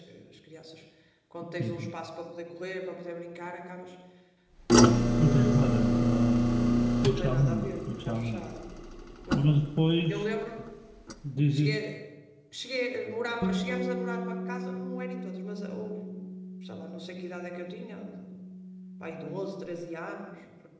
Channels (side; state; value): both; identical; correlation 1.00